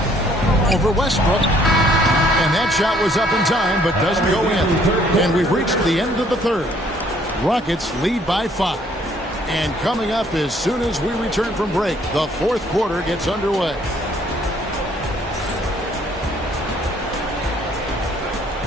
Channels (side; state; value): both; normal; correlation 0.63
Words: Over Westbrook. And that shot was up in time, but doesn't go in. And we've reached the end of the third. Rockets lead by 5. And coming up as soon as we return from break, the fourth quarter gets underway.